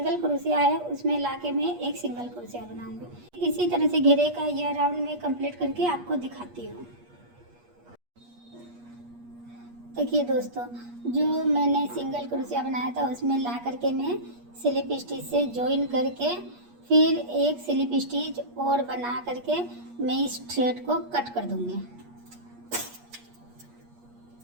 क्रोशिया है उसमें लाके मैं एक सिंगल क्रोशिया बनाऊंगी। इसी तरह से घेरे का यह राउंड मैं कंप्लीट करके आपको दिखाती हूँ। देखिए दोस्तों, जो मैंने सिंगल क्रोशिया बनाया था उसमें ला करके मैं स्लिप स्टिच से जॉइन करके फिर एक स्लिप स्टिच और बना करके मैं इस थ्रेड को कट कर दूंगी।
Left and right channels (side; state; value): left; late; 8.4 ms